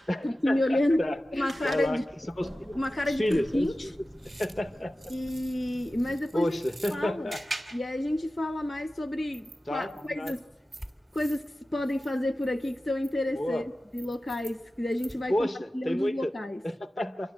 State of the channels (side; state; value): both; normal; correlation 0.95